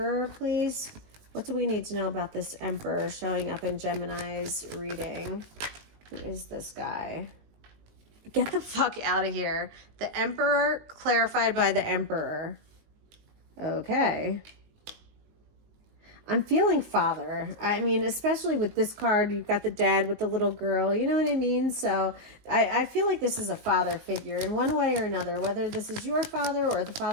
please. What do we need to know about this Emperor showing up in Gemini's reading? Who is this guy? Get the fuck out of here. The Emperor clarified by the Emperor. Okay. I'm feeling father. I mean, especially with this card, you've got the dad with the little girl, you know what I mean? So I feel like this is a father figure in one way or another, whether this is your father or the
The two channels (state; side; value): late; left; 19 ms